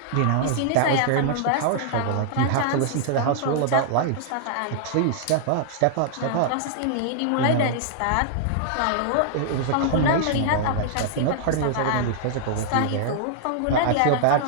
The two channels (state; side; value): different; both; correlation -0.01